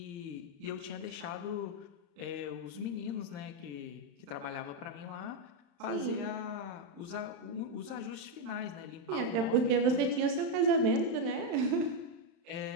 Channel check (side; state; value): left; late; 35 ms